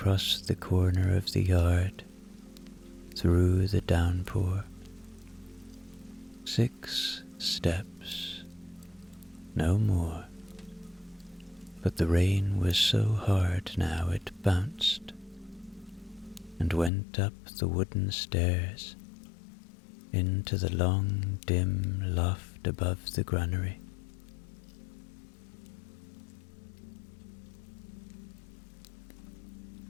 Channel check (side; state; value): right; drops out; at 16.9 s